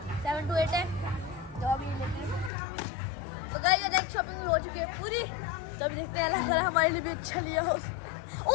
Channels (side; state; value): right; drops out; at 2.5 s